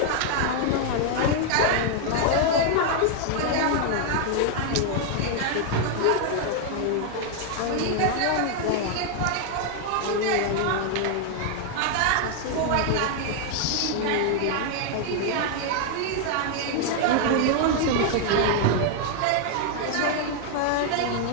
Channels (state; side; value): different; both; correlation 0.00